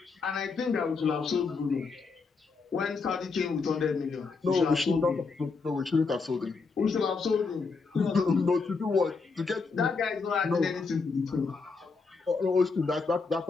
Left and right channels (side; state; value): right; quieter; 4.5 dB